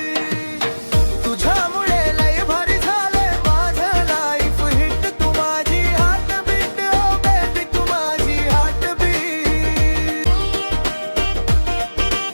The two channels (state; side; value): inverted; both; correlation -1.00